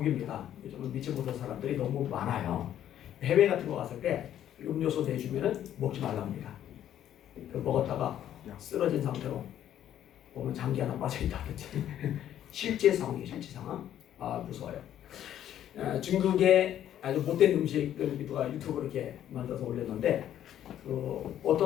요즘은 믿지 못할 사람들이 너무 많아요. 해외 같은 거 갔을 때 음료수 내주면은 먹지 말라 합니다. 먹었다가 쓰러진 상태로 보면 장기 하나 빠져있다든지 실제 상황이에요. 실제 상황. 무서워요. 중국의 아주 못된 음식을 누가 유튜브로 이렇게 만들어서 올렸는데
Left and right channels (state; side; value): quieter; right; 11.1 dB